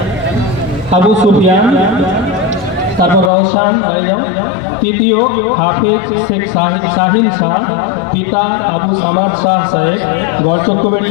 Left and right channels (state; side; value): drops out; right; at 3.3 s